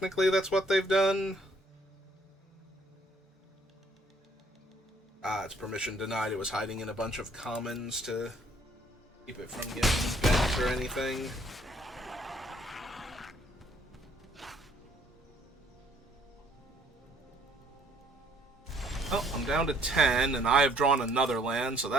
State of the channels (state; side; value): normal; both; correlation 0.62